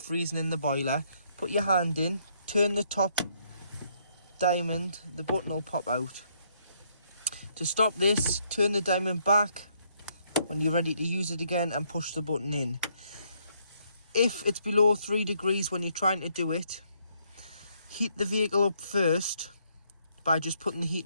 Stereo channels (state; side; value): inverted; both; correlation -0.71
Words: in the boiler. Put your hand in, turn the top diamond, the button will pop out. To stop this, turn the diamond back when you're ready to use it again and push the button in. If it's below 3 degrees when you're trying to do it, heat the vehicle up first by just putting the